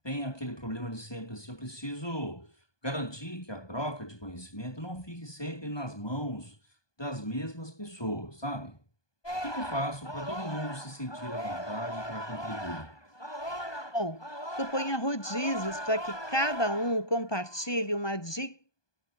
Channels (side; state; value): right; late; 1.2 ms